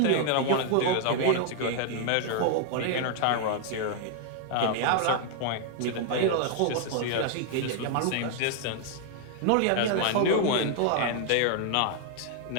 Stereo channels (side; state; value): both; different; correlation 0.00